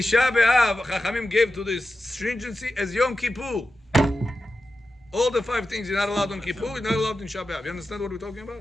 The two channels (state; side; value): normal; both; correlation 0.91